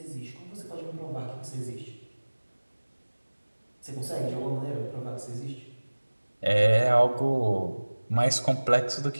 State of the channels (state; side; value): inverted; both; correlation -1.00